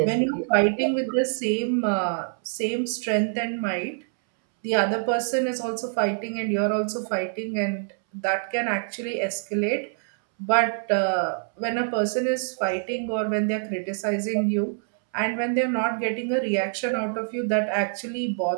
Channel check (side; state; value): left; silent; 61 dB below the other